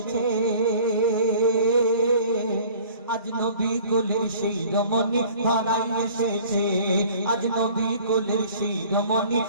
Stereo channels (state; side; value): inverted; both; correlation -0.50